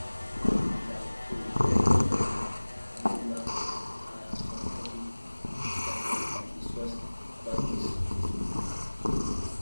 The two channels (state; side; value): inverted; both; correlation -1.00